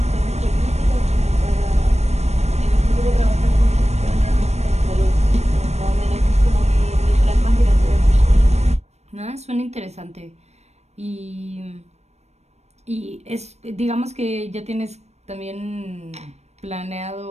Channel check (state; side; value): late; left; 0.32 ms